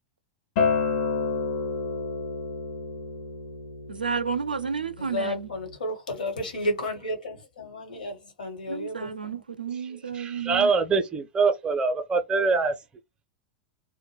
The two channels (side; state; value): both; normal; correlation 0.05